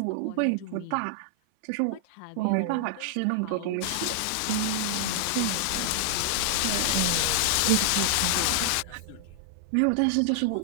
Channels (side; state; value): both; different; correlation -0.01